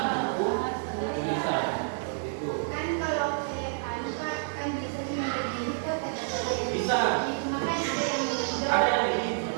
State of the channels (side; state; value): left; silent; 59 dB below the other